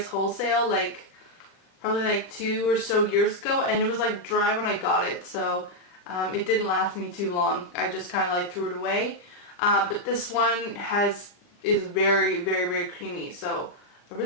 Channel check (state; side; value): late; right; 40 ms